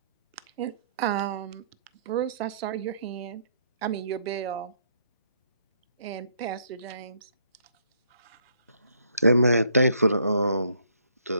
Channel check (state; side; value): inverted; both; correlation -0.68